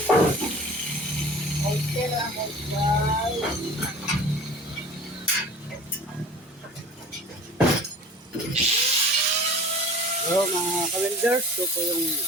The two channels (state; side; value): normal; both; correlation 0.42